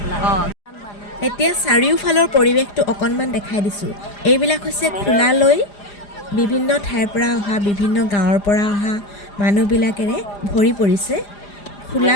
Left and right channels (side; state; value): right; late; 4.9 ms